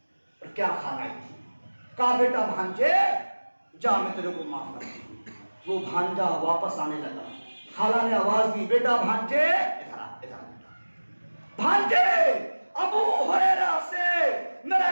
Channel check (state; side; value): inverted; both; correlation -1.00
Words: اور کیا خالائیں تھی۔ کہا بیٹا بھانجے جا میں تیرے کو معاف کرتی ہوں۔ وہ بھانجا واپس آنے لگا، خالہ نے آواز دی بیٹا بھانجے ادھر آ، ادھر آ۔ بھانجے ابو ہریرہ سے میرا